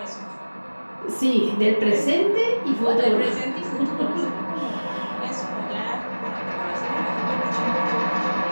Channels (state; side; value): inverted; both; correlation -1.00